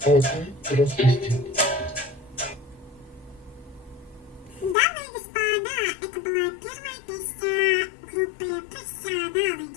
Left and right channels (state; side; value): drops out; right; at 4.8 s